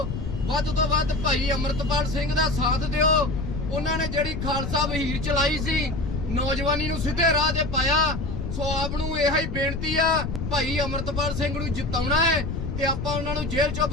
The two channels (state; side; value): noise; left; rumble, 5 dB below the sound